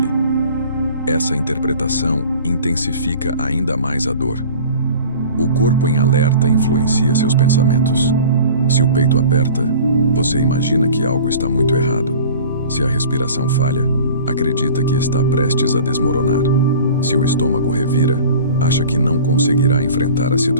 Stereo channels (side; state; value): both; inverted; correlation -0.42